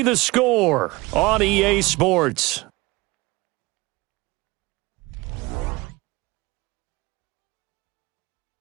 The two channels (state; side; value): quieter; left; 22.5 dB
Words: the score on EA Sports.